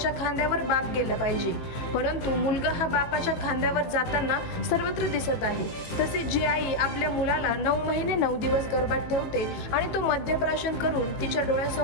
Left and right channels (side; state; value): right; late; 18 ms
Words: खांद्यावर बाप गेला पाहिजे, परंतु मुलगा हा बापाच्या खांद्यावर जाताना सर्वत्र दिसत आहे। तसेच जी आई आपल्या मुलाला 9 महिने 9 दिवस गर्भात ठेवते आणि तो मद्यप्राशन करून तिच्या